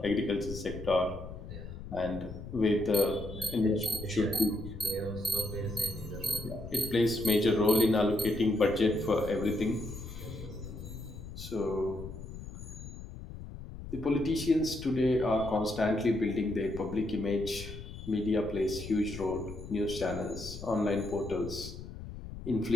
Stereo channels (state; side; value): noise; left; rumble, 11 dB below the sound